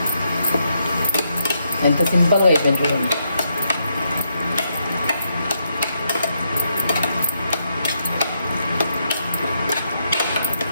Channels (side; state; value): both; inverted; correlation -0.79